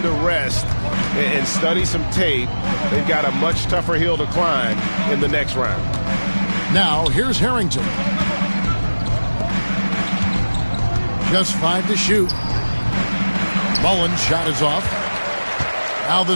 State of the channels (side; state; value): both; inverted; correlation -1.00